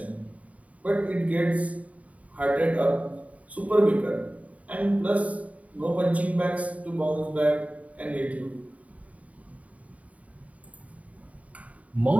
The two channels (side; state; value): left; late; 0.069 ms